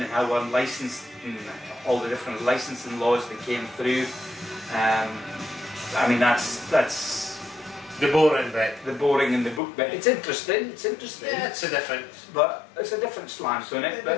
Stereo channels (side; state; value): right; drops out; at 9.6 s